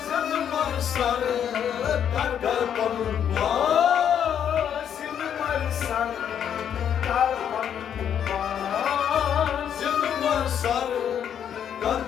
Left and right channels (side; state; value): right; quieter; 8.9 dB